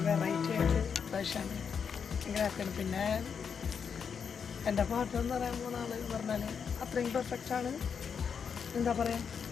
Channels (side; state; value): right; quieter; 6.7 dB